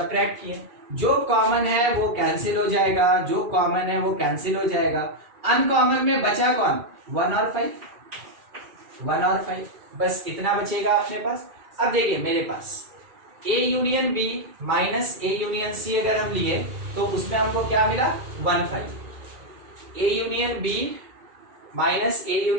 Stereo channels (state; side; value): late; left; 2.4 ms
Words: किए। जो कॉमन है वो कैंसिल हो जाएगा, जो कॉमन है वो कैंसिल हो जाएगा। अनकॉमन में बचा कौन, 1 और 5, 1 और 5, बस इतना बचेगा अपने पास। अब देखिए मेरे पास A union B minus A union C अगर हम लिए तो उसमें हमको क्या मिला, 1 5। A union B minus A